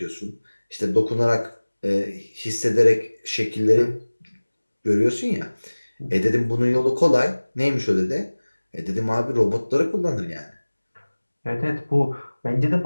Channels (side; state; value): both; inverted; correlation -1.00